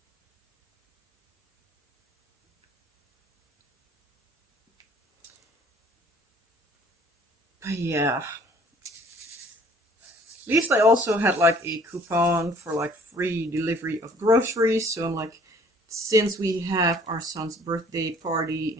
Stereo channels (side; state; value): both; normal; correlation 0.55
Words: But yeah. At least I also had like a coupon for like free delivery of groceries. So I'm like, since we have our son's birthday party